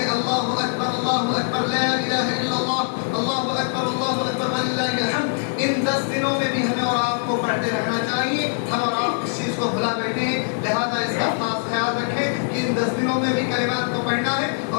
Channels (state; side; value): silent; right; 63 dB below the other